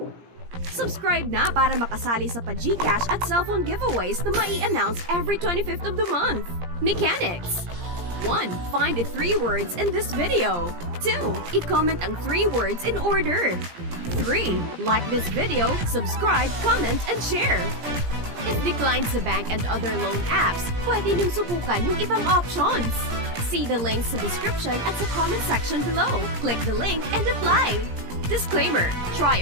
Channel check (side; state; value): left; late; 17 ms